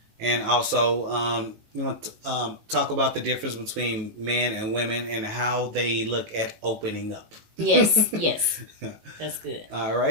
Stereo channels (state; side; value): late; left; 18 ms